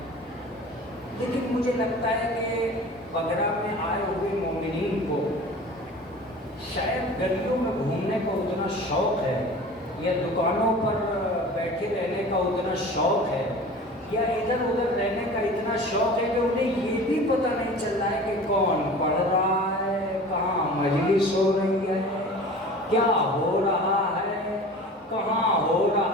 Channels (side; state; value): both; normal; correlation 0.39